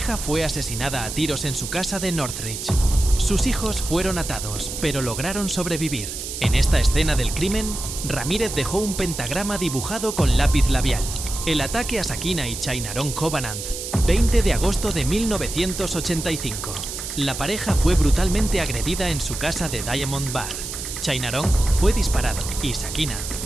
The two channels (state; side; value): noise; right; hiss, 7 dB below the sound